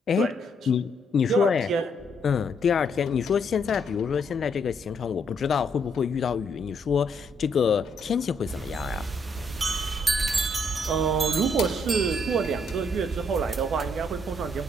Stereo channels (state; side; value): normal; both; correlation 0.72